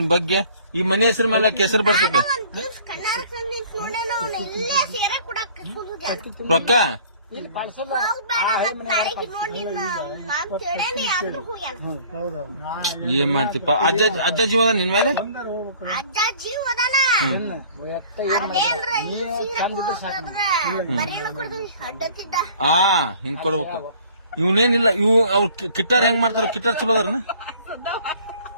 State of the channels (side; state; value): both; inverted; correlation -0.52